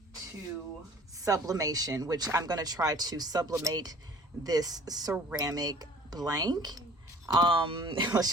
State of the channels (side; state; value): both; normal; correlation 0.51